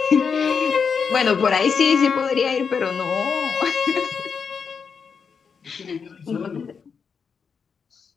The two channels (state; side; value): quieter; right; 6.0 dB